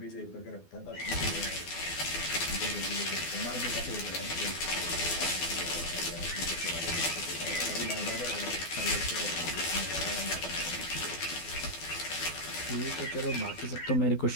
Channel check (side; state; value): right; late; 12 ms